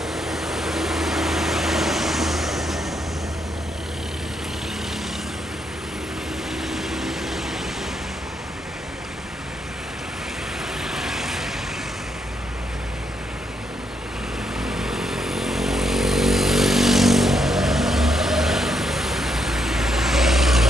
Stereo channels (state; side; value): normal; both; correlation 0.77